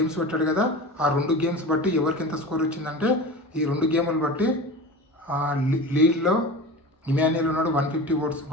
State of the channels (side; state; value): both; normal; correlation 0.32